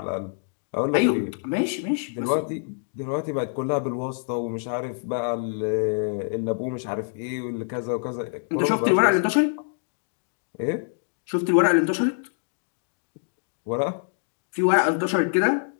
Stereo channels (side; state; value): right; silent; digital silence